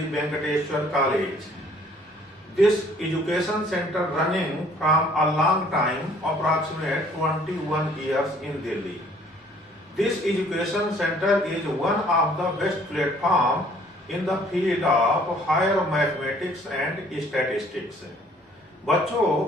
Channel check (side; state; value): both; normal; correlation 0.58